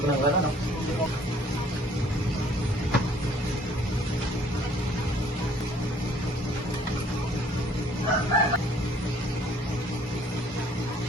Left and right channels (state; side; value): normal; both; correlation 0.58